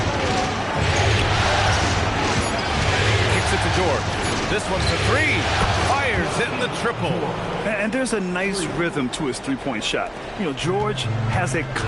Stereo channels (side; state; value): both; identical; correlation 1.00